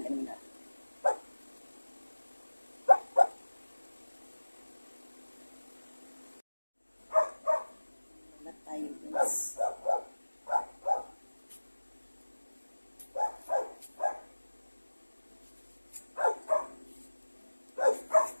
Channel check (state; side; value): inverted; both; correlation -1.00